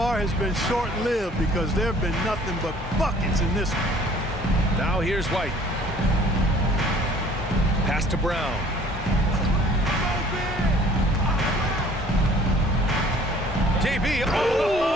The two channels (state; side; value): normal; both; correlation 0.53